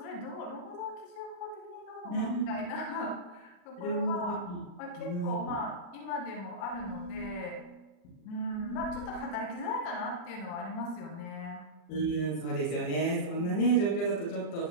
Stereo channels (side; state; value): right; late; 40 ms